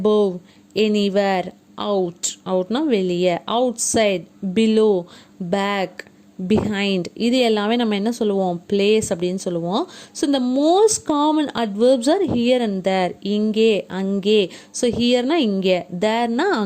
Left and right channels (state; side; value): identical; both; correlation 1.00